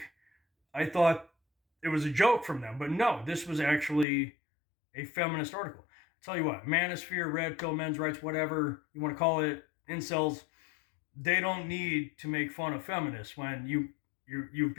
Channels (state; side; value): drops out; right; at 4.0 s